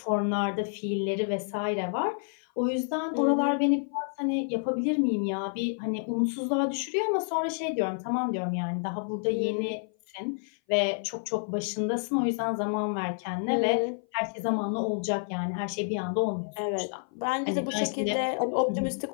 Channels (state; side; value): silent; right; 57 dB below the other